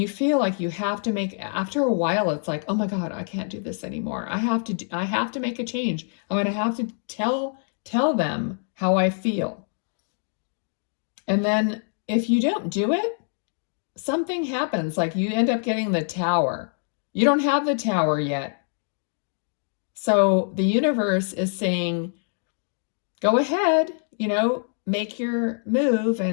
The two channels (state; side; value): silent; right; 62 dB below the other